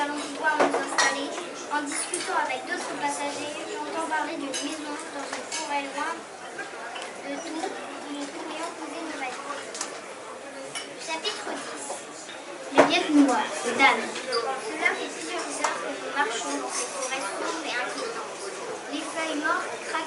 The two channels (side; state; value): both; identical; correlation 1.00